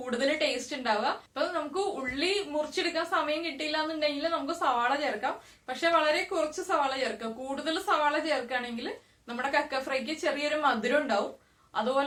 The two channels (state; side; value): identical; both; correlation 1.00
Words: ടേസ്റ്റ് ഉണ്ടാവുക. അപ്പൊ നമുക്ക് ഉള്ളി മുറിച്ചെടുക്കാൻ സമയം കിട്ടിയില്ല എന്നുണ്ടെങ്കിൽ നമുക്ക് സവാള ചേർക്കാം. പക്ഷെ വളരെ കുറച്ച് സവാള ചേർക്കാം. കൂടുതൽ സവാള ചേർക്കുകയാണെങ്കിൽ നമ്മുടെ കക്ക ഫ്രൈക്ക് ചെറിയൊരു മധുരം ഉണ്ടാവും.